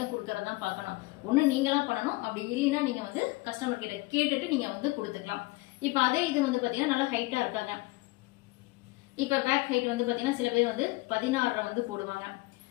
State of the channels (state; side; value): quieter; right; 22.3 dB